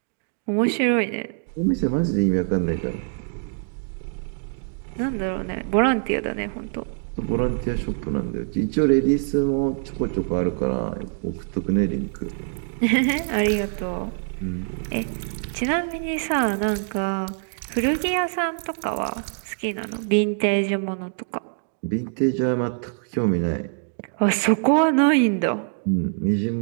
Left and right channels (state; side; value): silent; left; digital silence